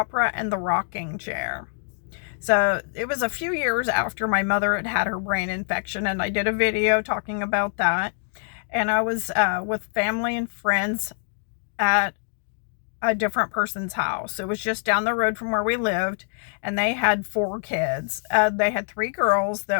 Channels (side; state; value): right; silent; digital silence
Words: and the Rocking Chair. So, it was a few years after my mother had had her brain infection, and I did a video talking about that. And I was with family and friends at a different person's house. It was just down the road from where we lived, and they had four kids. They had three girls